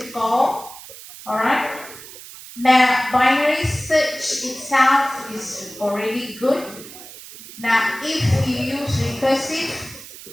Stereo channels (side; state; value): right; noise; hiss, 16 dB below the sound